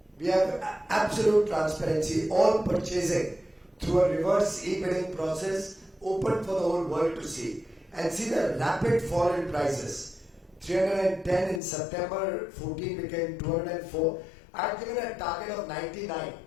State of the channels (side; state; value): right; drops out; at 11.6 s